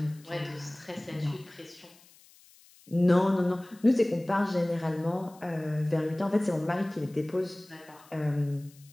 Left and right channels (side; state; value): left; noise; hiss, 26 dB below the sound